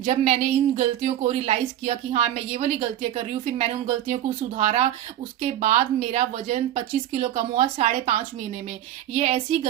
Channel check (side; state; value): left; quieter; 12.0 dB